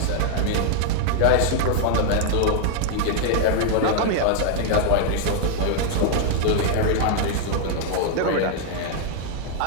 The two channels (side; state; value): both; different; correlation -0.01